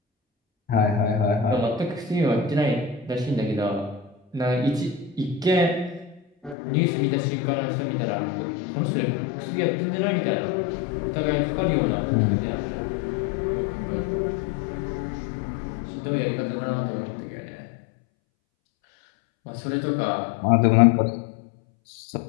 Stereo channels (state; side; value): drops out; right; at 6.6 s